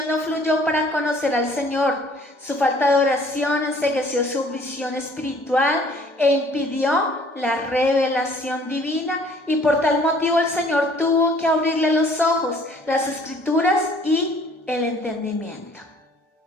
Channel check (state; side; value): late; right; 1.3 ms